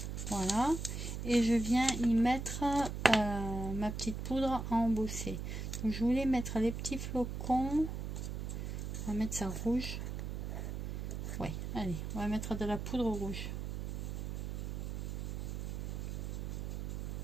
Voilà. Et je viens y mettre ma petite poudre à embosser. Donc je voulais mettre les petits flocons. On va mettre ça rouge. Ouais, allez, on va mettre de la poudre rouge.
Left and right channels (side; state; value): right; noise; hum, 4 dB below the sound